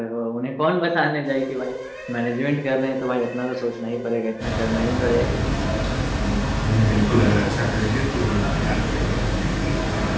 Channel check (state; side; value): identical; both; correlation 1.00